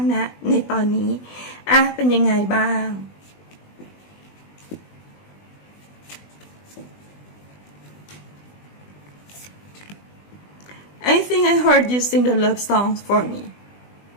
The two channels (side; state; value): right; late; 20 ms